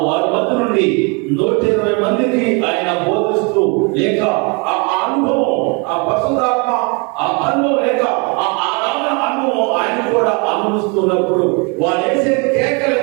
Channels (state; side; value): quieter; left; 32.5 dB